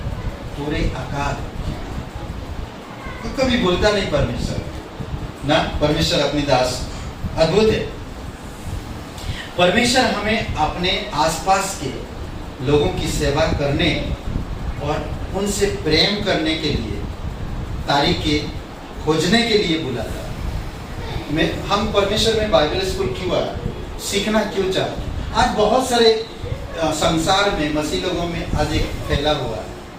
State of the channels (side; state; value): both; identical; correlation 1.00